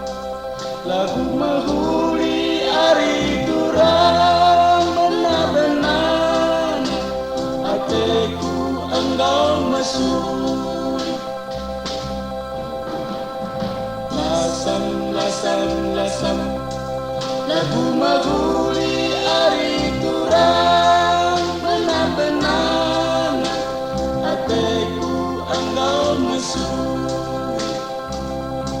lagu mahuli ari durang benar-benar hatiku engkau mesuri. Lasam lasam lasam lagu mahuli ari durang benar-benar hatiku engkau mesuri.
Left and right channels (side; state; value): both; identical; correlation 1.00